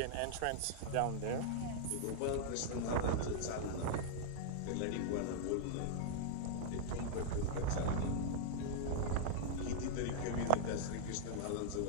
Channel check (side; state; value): both; different; correlation -0.01